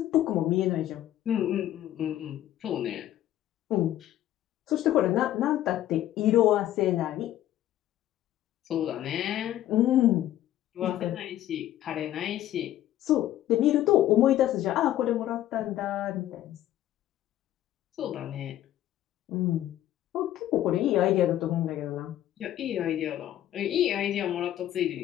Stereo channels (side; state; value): right; quieter; 12.9 dB